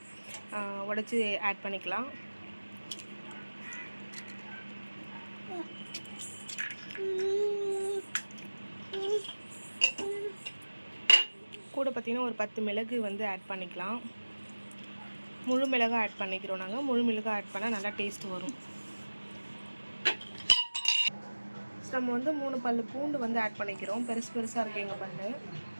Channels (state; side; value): inverted; both; correlation -1.00